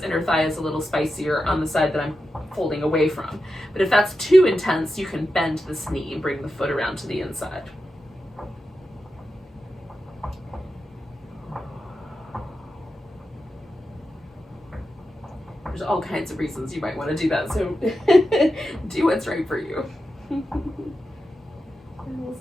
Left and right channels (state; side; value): normal; both; correlation 0.90